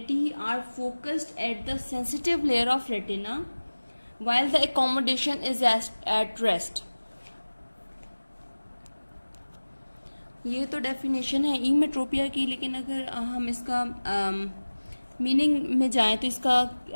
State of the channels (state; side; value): inverted; both; correlation -1.00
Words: are focused at the sensitive layer of retina while the accommodation is at rest. ये तो definition है ईमेट्रोपिया की, लेकिन अगर हम इसका meaning में जाएं तो इसका